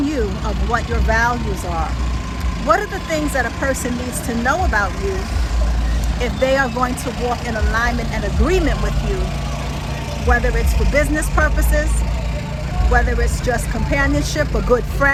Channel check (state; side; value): identical; both; correlation 1.00